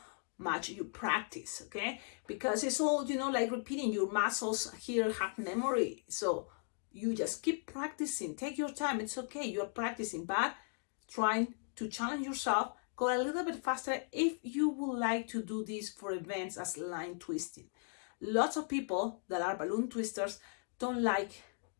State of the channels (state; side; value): silent; right; 53 dB below the other